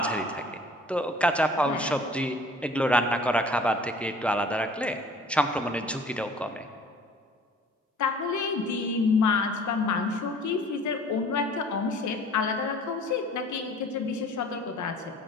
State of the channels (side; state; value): both; normal; correlation 0.49